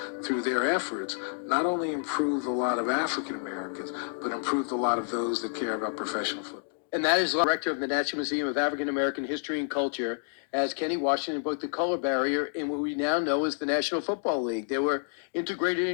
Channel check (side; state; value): right; silent; 59 dB below the other